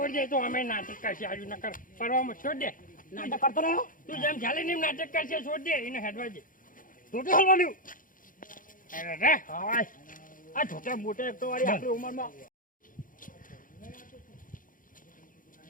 દે તો અમે નાટક કરશે આજુ નકર પરવામાં છોડ દે નાટક કરતો રહ્યો. તું જેમ ચાલે ને એમ નાટક કરશે છોડ દે એને હેડવા દે છોટે હલવાનું અરે રે હાય. આ છોટા મોટે એક તો વાળી આપણી ઉંમરમાં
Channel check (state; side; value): late; right; 0.39 ms